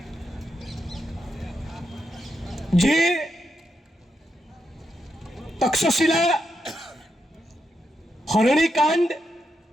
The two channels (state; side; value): normal; both; correlation 0.84